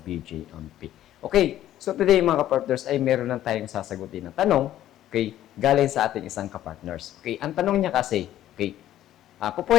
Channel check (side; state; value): right; quieter; 12.7 dB